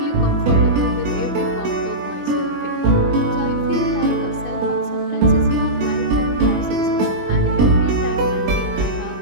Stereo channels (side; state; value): left; late; 21 ms